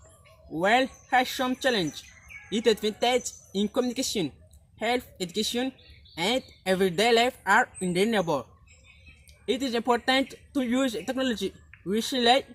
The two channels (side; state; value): both; identical; correlation 1.00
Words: While has some challenge, its advantage in communication, health, education, and everyday life are undeniable. It is important to use technology wisely